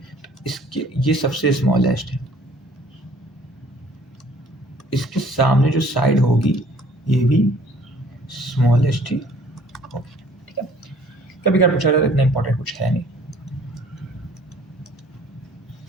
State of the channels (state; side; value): normal; both; correlation 0.55